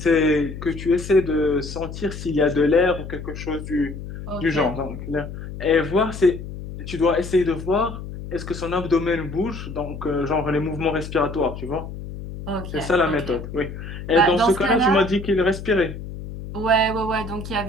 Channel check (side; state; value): left; noise; hum, 10 dB below the sound